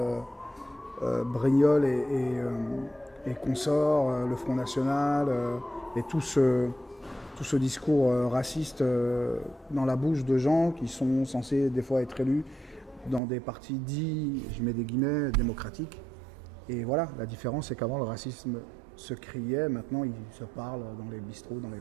et consorts, le Front National et tout ce discours raciste dans la bouche de gens qui sont censés des fois être élus dans des partis dits, je mets des guillemets, démocratiques. Et voilà, la différence c'est qu'avant le racisme se criait, maintenant il se parle dans les bistrots, dans les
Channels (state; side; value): drops out; left; at 13.2 s